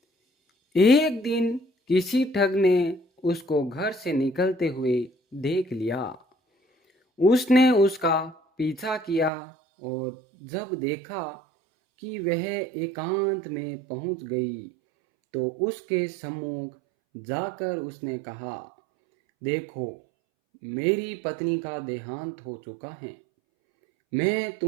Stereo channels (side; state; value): left; drops out; at 9.3 s